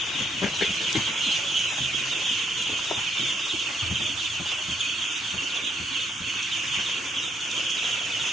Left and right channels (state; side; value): normal; both; correlation 0.73